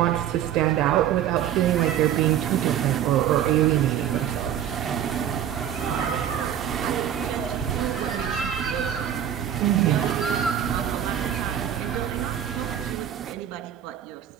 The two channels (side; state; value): left; quieter; 10.1 dB